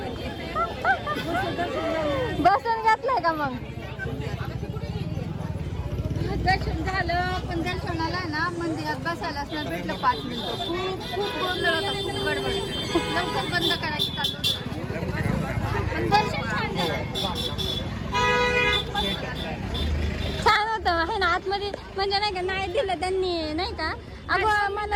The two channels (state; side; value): identical; both; correlation 1.00